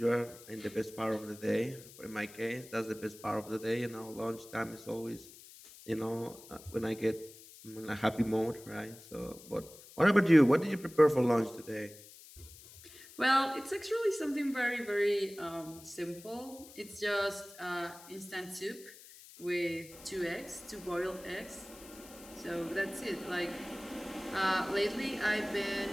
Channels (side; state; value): left; noise; hiss, 19 dB below the sound